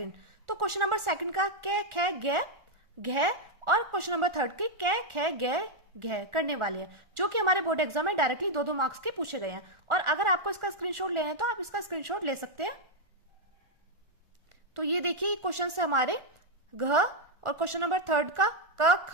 तो क्वेश्चन नंबर 2 का कै खे गे घे और क्वेश्चन नंबर 3 के कै खे गे घे करने वाले हैं, जो कि हमारे बोर्ड एग्जाम में डायरेक्टली 2-2 मार्क्स के पूछे गए हैं। और अगर आपको इसका स्क्रीनशॉट लेना है तो आप इसका स्क्रीनशॉट ले सकते हैं। तो ये देखिए क्वेश्चन है हमारे घ, और क्वेश्चन नंबर 3 का क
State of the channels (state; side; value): late; left; 1.4 ms